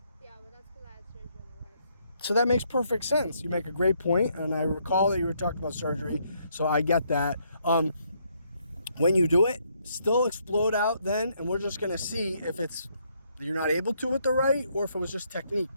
Yeah, but that's because I had surgery on the right. So that makes perfect sense. You make a great point, and I recall that you were talking about surgery, so I get that. When you do it, still explode out then, and we're just going to see if you're not able to with the right, or if it was just technique.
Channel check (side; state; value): both; inverted; correlation -0.72